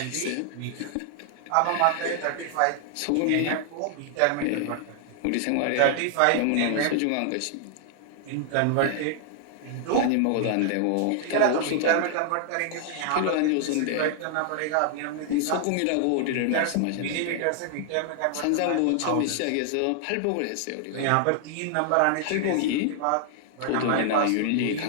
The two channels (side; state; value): both; different; correlation -0.01